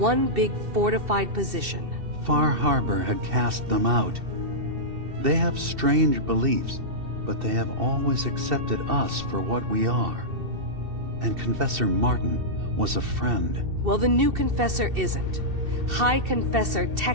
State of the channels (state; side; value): late; left; 2.7 ms